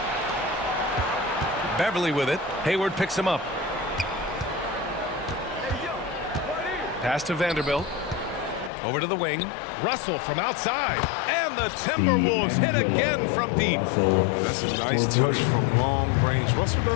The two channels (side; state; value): right; drops out; at 8.7 s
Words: Beverly with it. Hayward picks him up. Pass to Vanderbilt. Over to the wing. Russell from outside. And the Timberwolves hit again from deep. That's a nice touch from long range. Russell